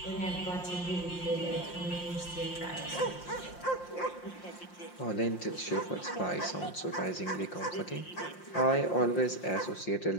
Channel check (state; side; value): late; right; 5.7 ms